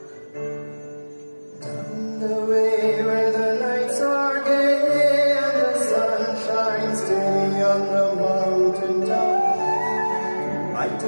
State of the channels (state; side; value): inverted; both; correlation -1.00